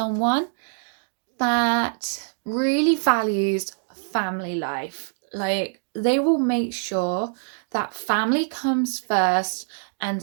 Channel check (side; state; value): left; silent; digital silence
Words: that really values family life. Like, they will make sure that family comes first, and